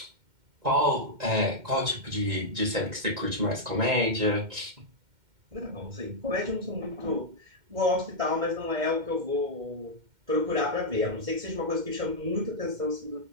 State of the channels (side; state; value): left; late; 2.1 ms